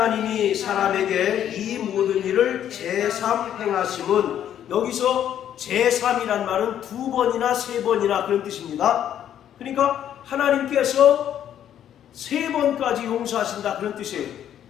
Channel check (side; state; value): right; quieter; 10.3 dB